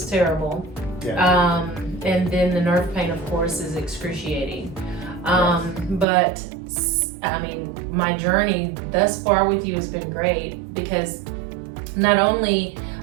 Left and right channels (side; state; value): left; drops out; at 6.1 s